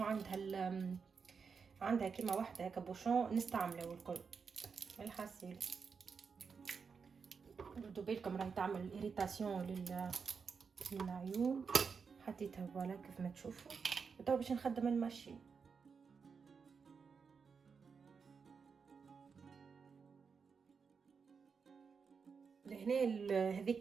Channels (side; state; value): left; quieter; 5.7 dB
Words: عندها كيما واحده هكا بوشون نستعمله الكل الحاسيل. ردوا بالكم راهي تعمل اريتاسيون للعيون. حطيتها فوالا كيف ما تشوفوا. وتو باش نخدم الماشين. لهنا